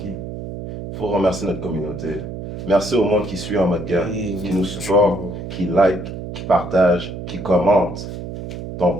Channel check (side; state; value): right; noise; hum, 8 dB below the sound